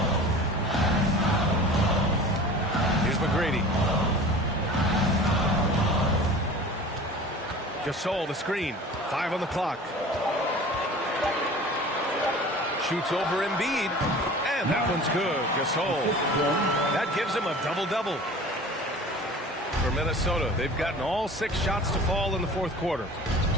Here's McGrady. Gasol, the screen. 5 on the clock. Shoots over Embiid. And that one's good. Gasol. That gives him a double-double. For Minnesota, they've gotten all 6 shots to fall in the fourth quarter.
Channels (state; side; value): normal; both; correlation 0.41